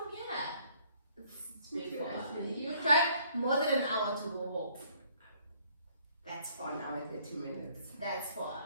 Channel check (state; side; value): inverted; both; correlation -0.62